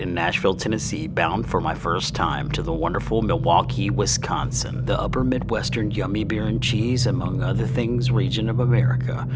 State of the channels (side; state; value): both; identical; correlation 1.00